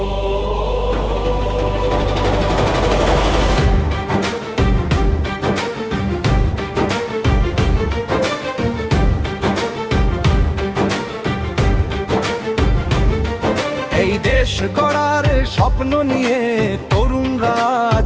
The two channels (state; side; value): identical; both; correlation 1.00